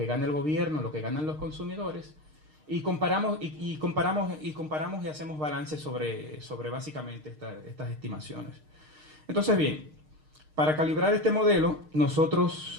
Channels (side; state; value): left; late; 6.5 ms